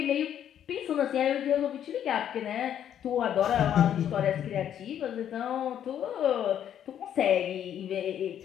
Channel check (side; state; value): right; quieter; 9.9 dB